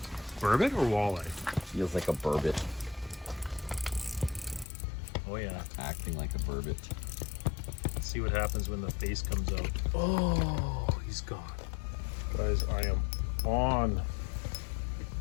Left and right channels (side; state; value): right; drops out; at 4.7 s